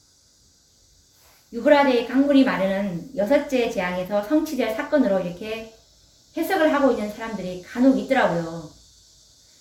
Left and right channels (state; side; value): identical; both; correlation 1.00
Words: 유브라데 강물이 마르는 6째 재앙에서 성취될 사건으로 이렇게 해석을 하고 있는 사람들이 간혹 있더라고요.